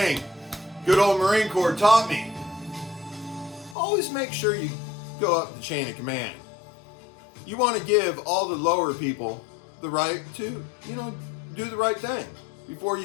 good old Marine Corps taught me, always make sure you go up the chain of command. You want to give all the lower people the right to, do the right thing before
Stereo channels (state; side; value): drops out; right; at 3.8 s